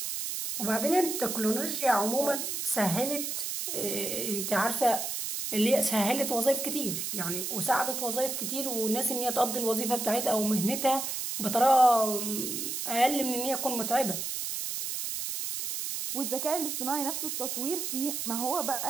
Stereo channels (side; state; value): right; noise; hiss, 3 dB below the sound